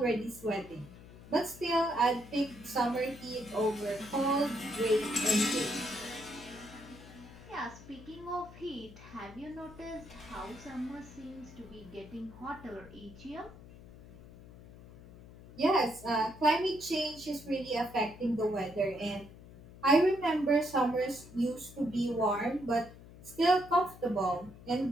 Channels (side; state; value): left; noise; hum, 18 dB below the sound